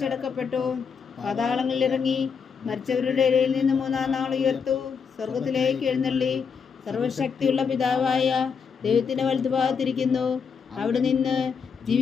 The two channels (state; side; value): quieter; right; 6.2 dB